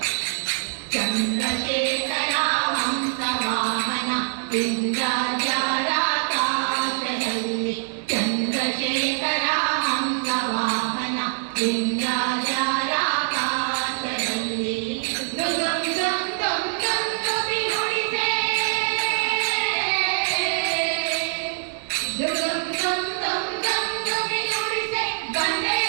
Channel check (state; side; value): silent; left; digital silence